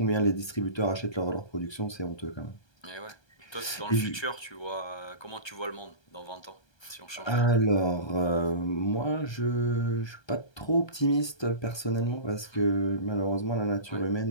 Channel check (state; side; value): late; right; 1.3 ms